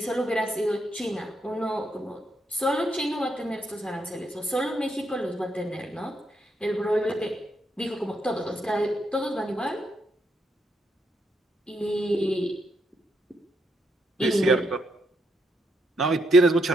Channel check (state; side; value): normal; both; correlation 0.78